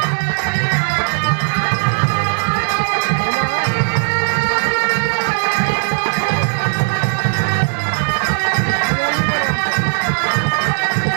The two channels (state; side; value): silent; left; digital silence